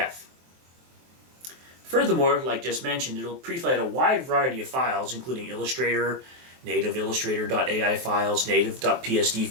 Furthermore, like just mentioned, it'll pre-flight a wide variety of files, including Illustrator, native Illustrator.ai files, native.psd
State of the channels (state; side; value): late; left; 23 ms